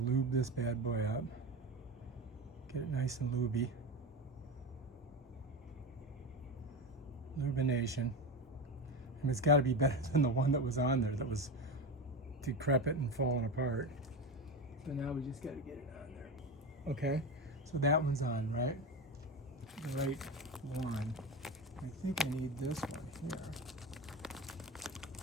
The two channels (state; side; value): normal; both; correlation 0.20